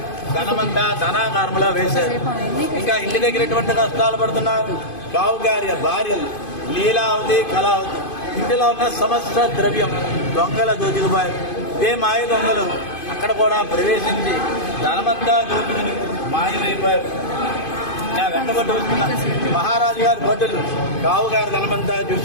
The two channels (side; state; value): right; late; 2.5 ms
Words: ధనమంతా ధనాకారంలో వేశారు. ఇంకా ఇంటి దగ్గర ఎటువంటి కష్టాలు పడుతున్నారు. రావు గారి భార్యలు లీలావతి, కళావతి ఇంటిలో ఉన్న సమస్త ద్రవ్యం దొంగల దోచుకుపోయారు. ఇదే మాయ దొంగలు అక్కడ కూడా ప్రవేశించి ధనమంతా దోచుకుని మాయమైపోయారు. వెంటబట్టి వస్తున్న మహారాజు గారి భటులు రావు గారి ధనమంతా